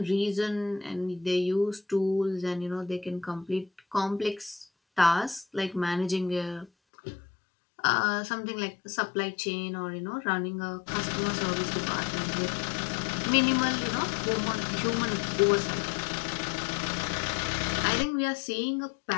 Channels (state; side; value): drops out; right; at 6.7 s